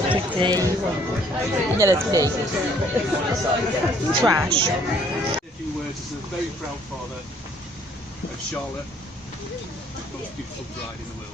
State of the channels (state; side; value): normal; both; correlation 0.62